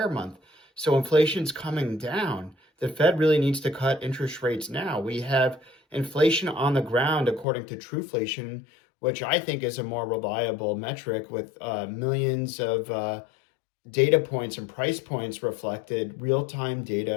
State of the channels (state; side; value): drops out; right; at 7.5 s